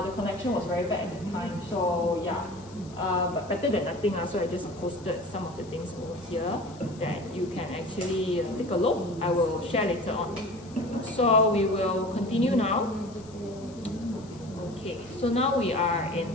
connection was very bad at the time. So yeah, but better than nothing. So I just posted some of the things over here that you can actually take a look. I will share later on. So we will continue now. Okay, so now we are in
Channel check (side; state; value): left; noise; hiss, 24 dB below the sound